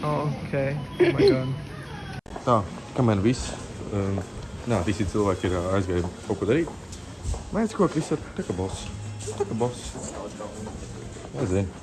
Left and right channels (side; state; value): both; identical; correlation 1.00